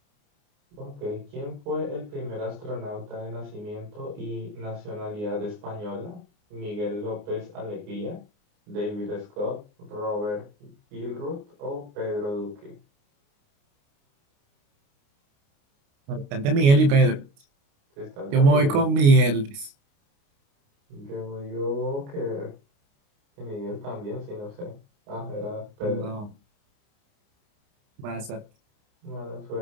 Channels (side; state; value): left; late; 29 ms